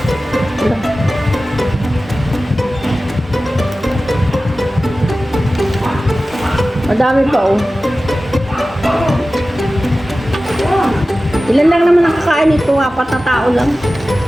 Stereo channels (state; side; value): normal; both; correlation 0.95